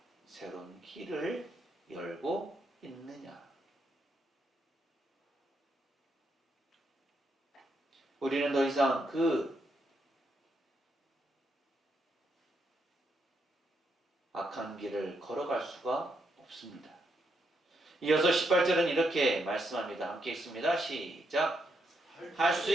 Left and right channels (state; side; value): normal; both; correlation 0.79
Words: 새로운 길을 열고 있느냐? 우리는 더 이상 그 악한 길을 걸어갈 수가 없습니다. 이어서 18절은 이렇게 말씀합니다. 함께 읽습니다. 시작. 할 수